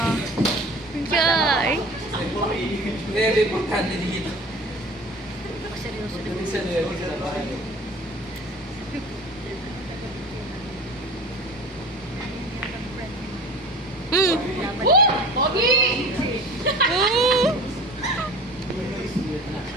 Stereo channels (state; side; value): normal; both; correlation 0.40